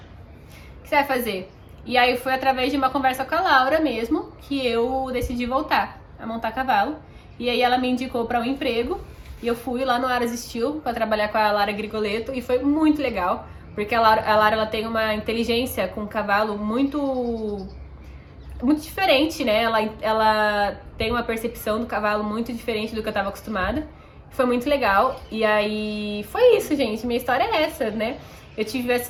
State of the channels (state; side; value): identical; both; correlation 1.00